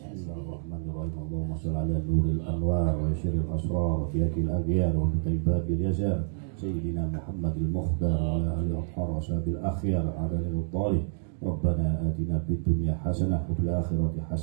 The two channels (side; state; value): left; silent; digital silence